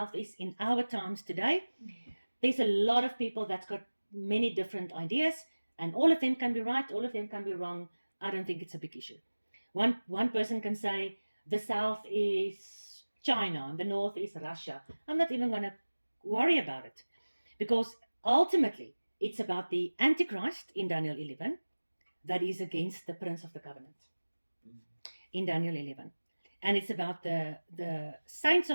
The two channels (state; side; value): inverted; both; correlation -1.00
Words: is in our times today, there's a lot of people that's got many different ideas, and all of them can be right, all of them can be wrong. I don't think it's a big issue. One person can say the south is China and the north is Russia. I'm not even going to worry about it, because ultimately it's about the Antichrist in Daniel 11 that is against the Prince of the Covenant in Daniel 11. And it's about the saints